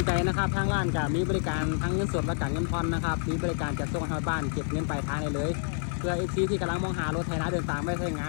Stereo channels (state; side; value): silent; right; 59 dB below the other